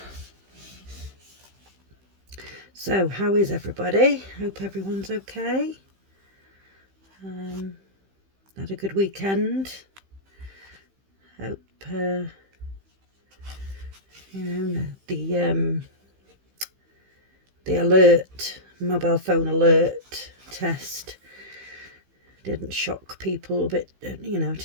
So how is everybody? Hope everyone's okay. Had a good weekend. Hope the alert, mobile phone alert test didn't shock people a bit,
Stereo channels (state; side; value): late; left; 15 ms